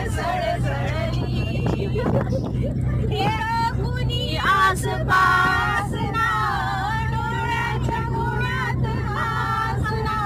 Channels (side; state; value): both; identical; correlation 1.00